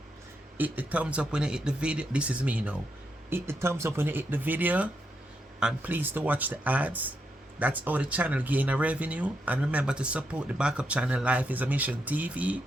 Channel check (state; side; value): normal; both; correlation 0.82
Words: Hit the thumbs up when you hit the video. This is me now. Hit the thumbs up when you hit the video. And please to watch the ads. That's how the channel gain a revenue. And remember to support the backup channel Life is a Mission TV.